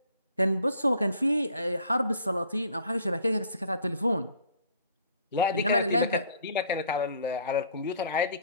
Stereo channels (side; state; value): both; inverted; correlation -0.56